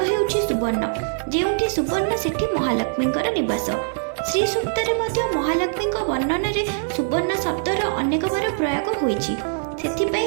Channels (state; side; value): silent; left; digital silence